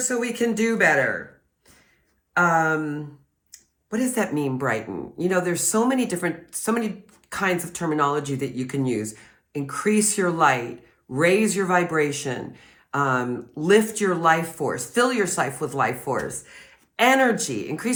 we can do better. What does that mean, Brighten? You know, there's so many kinds of terminology that you can use. Increase your light, raise your vibration, lift your life force, fill yourself with life force. Energy,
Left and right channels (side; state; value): both; identical; correlation 1.00